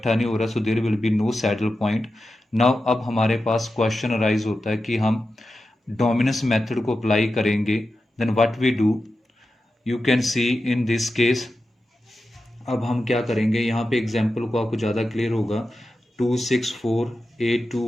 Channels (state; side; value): normal; both; correlation 0.91